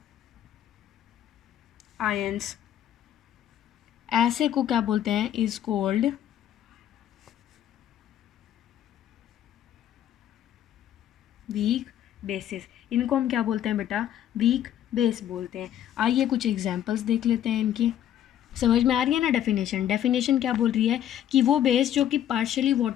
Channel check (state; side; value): quieter; right; 11.0 dB